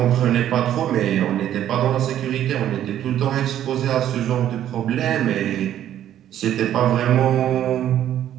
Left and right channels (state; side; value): quieter; left; 11.3 dB